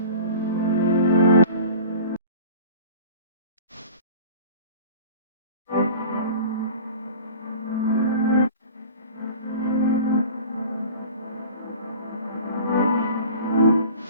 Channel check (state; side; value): inverted; both; correlation -0.40